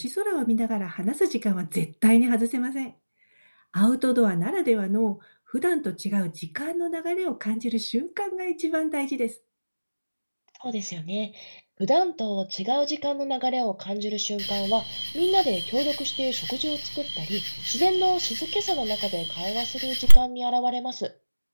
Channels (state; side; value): inverted; both; correlation -1.00